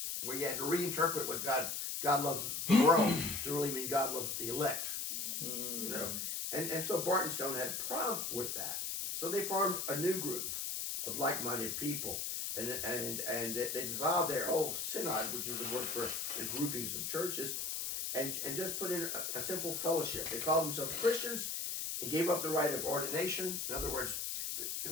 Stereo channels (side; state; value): left; noise; hiss, 2 dB below the sound